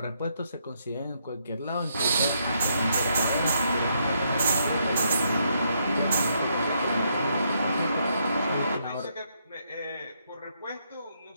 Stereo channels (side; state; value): both; inverted; correlation -0.76